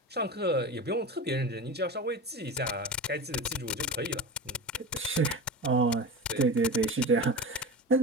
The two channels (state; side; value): normal; both; correlation 0.27